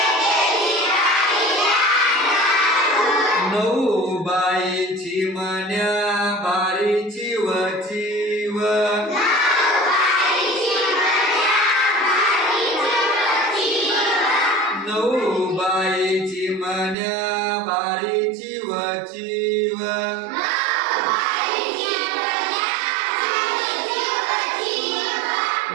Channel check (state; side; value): drops out; left; at 16.9 s